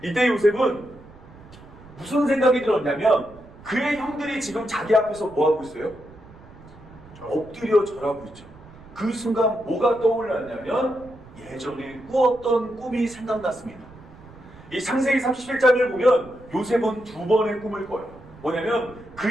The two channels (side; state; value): right; noise; rumble, 21 dB below the sound